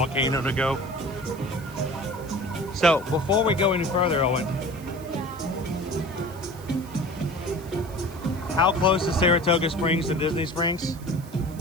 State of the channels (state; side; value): noise; right; hiss, 21 dB below the sound